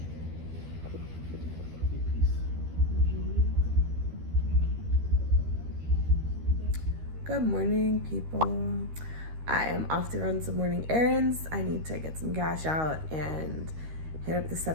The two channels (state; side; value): late; left; 13 ms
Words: Good morning, people. I am off to run some morning errands. I need to get some cash out and hit up the